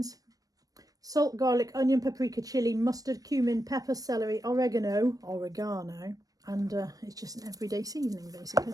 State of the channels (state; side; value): late; left; 0.18 ms